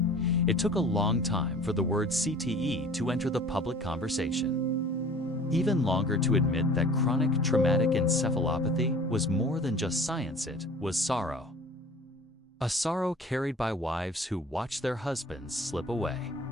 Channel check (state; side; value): normal; both; correlation 0.46